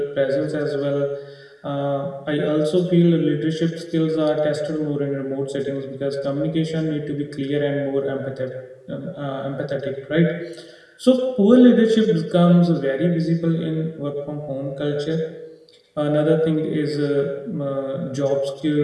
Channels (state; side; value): identical; both; correlation 1.00